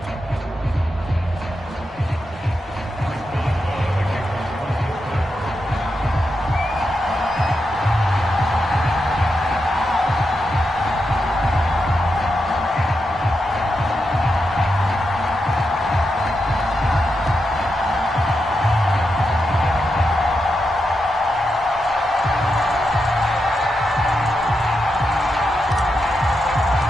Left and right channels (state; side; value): normal; both; correlation 0.86